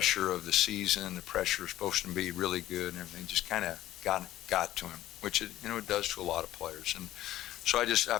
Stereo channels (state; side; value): quieter; right; 14.1 dB